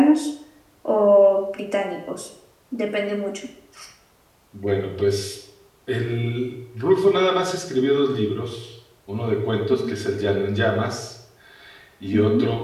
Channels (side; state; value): both; identical; correlation 1.00